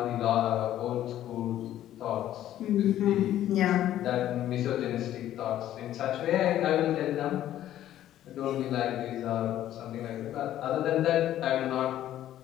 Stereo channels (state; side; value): quieter; right; 12.4 dB